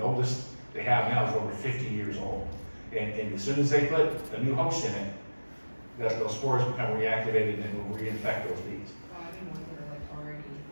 oldest they have now is over 50 years old. And as soon as they put a new host in it, those spores become reactivated and will reinfect those bees. I mean, ones that are like already,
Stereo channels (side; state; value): both; inverted; correlation -1.00